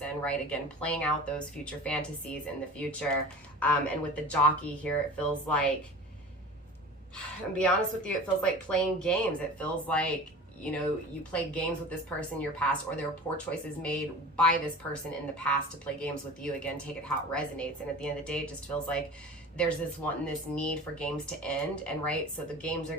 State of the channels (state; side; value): normal; both; correlation 0.38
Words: right? Again, playing out those future fantasies in the future. And with the Jockey here, it feels like, I'll be honest with you, it feels like playing games. It feels like, you know, you played games with this person in your past, or there were poor choices made by this person in the past to play games with you. Again, take it how it resonates. And at the end of the day, it just feels like there's this need for games to end, and right, so the games are